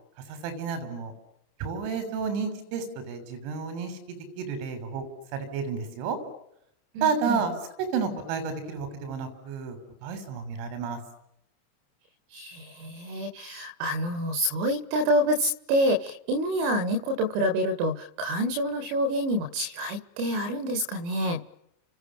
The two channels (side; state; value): left; late; 29 ms